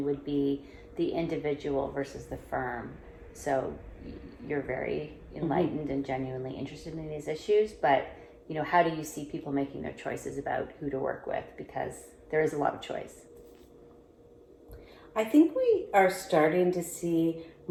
would be the individual versus the firm. So you're very enlightened and genuinely interested in these issues, but how do you see people making their choices about who to work with? Because there is a lot of choice. I think we are starting to see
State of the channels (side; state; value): both; identical; correlation 1.00